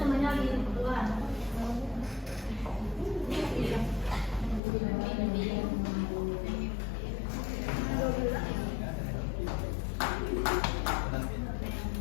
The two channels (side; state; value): right; drops out; at 4.6 s